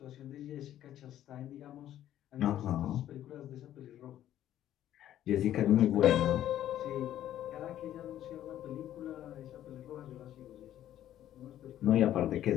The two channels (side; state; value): right; quieter; 12.0 dB